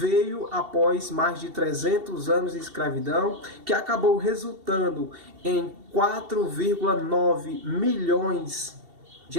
após mais de 300 anos de escravidão, que acabou resultando em 4,9 milhões de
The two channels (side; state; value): left; late; 2.7 ms